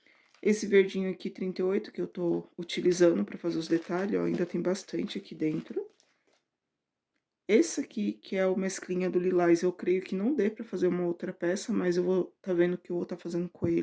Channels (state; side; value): identical; both; correlation 1.00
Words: Esse verdinho aqui, 38, que eu tô utilizando pra fazer os detalhes, ó, ainda tem bastante aqui dentro. Esse aqui, que é o mesclinha do lilás, eu creio que não dê pra fazer uma outra peça, mas eu vou tá vendo o que eu vou tá fazendo com